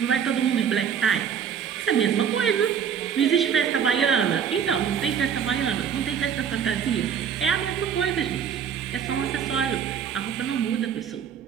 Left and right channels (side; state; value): left; quieter; 7.9 dB